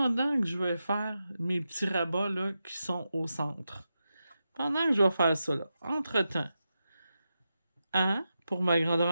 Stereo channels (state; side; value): inverted; both; correlation -0.89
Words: que je vais faire mes petits rabats là, qui sont au centre. Pendant que je vais faire ça, là, entre-temps, A, pour ma grandeur